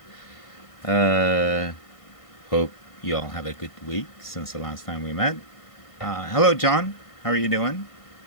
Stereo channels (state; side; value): late; right; 1.5 ms